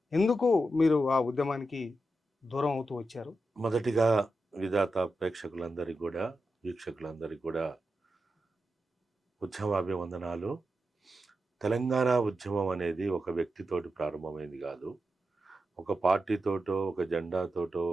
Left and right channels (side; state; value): both; normal; correlation 0.89